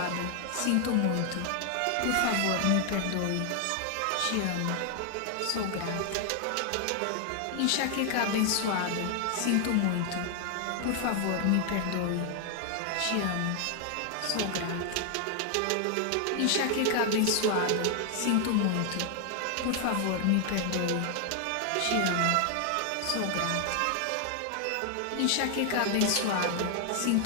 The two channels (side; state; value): both; different; correlation 0.00